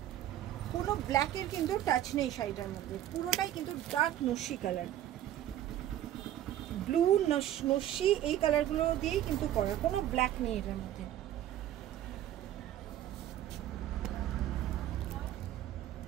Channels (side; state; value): left; quieter; 12.3 dB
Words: কোনো ব্ল্যাকের কিন্তু টাচ নেই শাড়িটার মধ্যে, পুরোটাই কিন্তু ডার্ক নস্যি কালার, ব্লু নস্যি এই কালারগুলো দিয়েই কিন্তু করা, কোনো ব্ল্যাক নেই এটার মধ্যে।